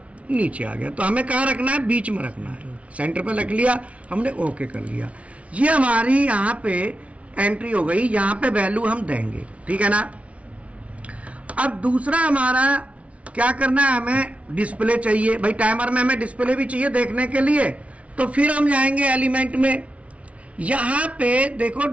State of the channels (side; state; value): left; late; 0.064 ms